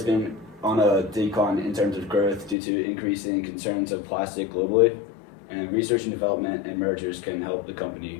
been on a decline in terms of growth due to increasing concerns of plastic globally, and research and development and mergers can help the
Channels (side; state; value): right; drops out; at 2.6 s